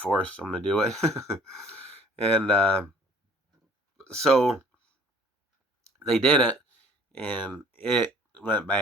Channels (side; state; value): both; normal; correlation 0.53